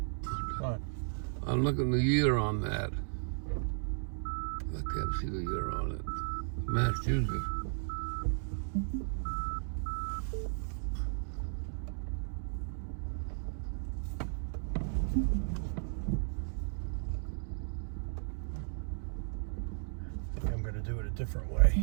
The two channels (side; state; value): left; silent; digital silence